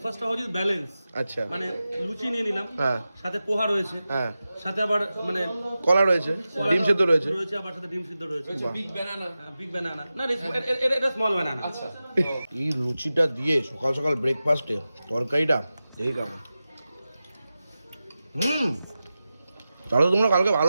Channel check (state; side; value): inverted; both; correlation -0.94